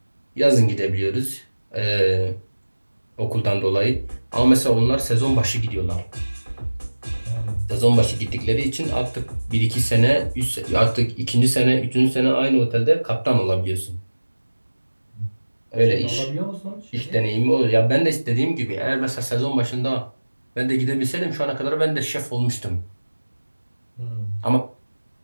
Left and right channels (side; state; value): both; inverted; correlation -1.00